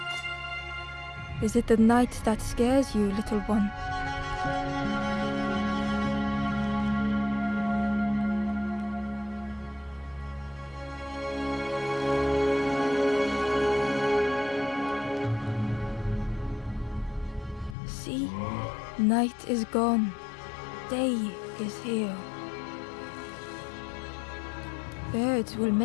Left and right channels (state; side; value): drops out; right; at 17.8 s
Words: Is it the night that scares you, little one? See, night is gone. Day is here. Birds will